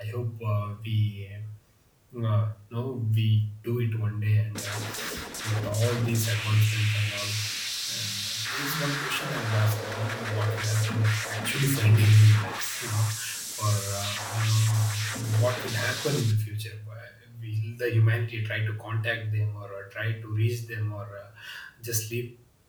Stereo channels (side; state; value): both; identical; correlation 1.00